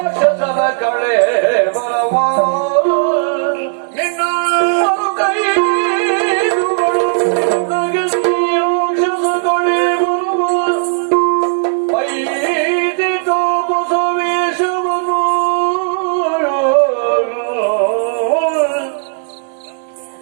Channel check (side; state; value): left; silent; digital silence